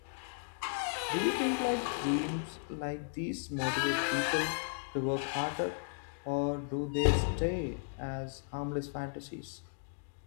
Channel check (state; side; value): silent; right; digital silence